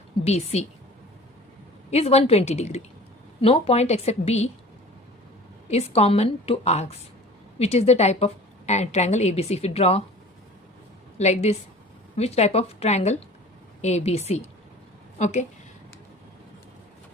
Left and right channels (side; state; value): both; normal; correlation 0.43